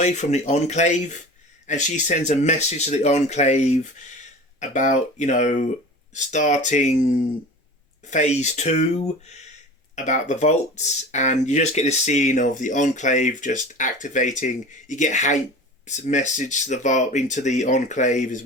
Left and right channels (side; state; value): both; normal; correlation 0.37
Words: from the Enclave, and she sends a message to the Enclave about, starting phase 2, about the vaults, and you just get this scene of the Enclave just activating. You get Hank's message to the vault into the Enclave as